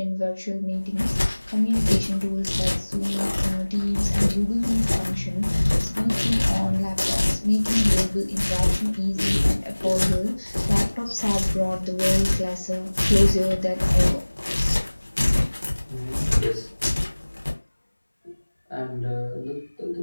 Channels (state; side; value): inverted; both; correlation -1.00